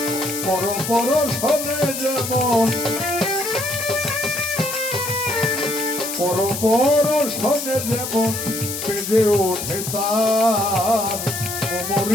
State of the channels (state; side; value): noise; left; hiss, 5 dB below the sound